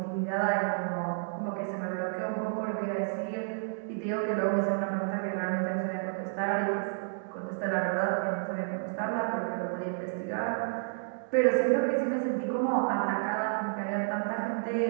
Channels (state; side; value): silent; left; digital silence